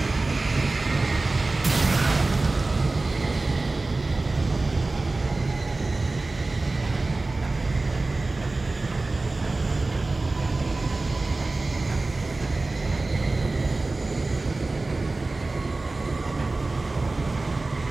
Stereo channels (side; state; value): left; quieter; 3.3 dB